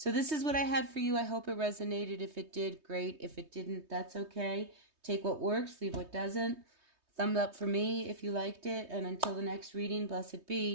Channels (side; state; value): left; late; 3.2 ms